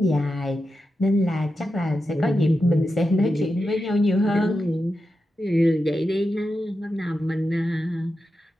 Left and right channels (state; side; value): normal; both; correlation 0.89